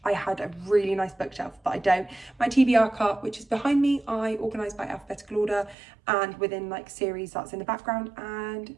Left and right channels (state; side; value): drops out; left; at 5.8 s